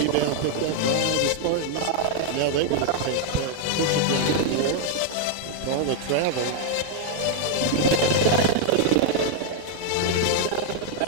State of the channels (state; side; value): different; both; correlation 0.00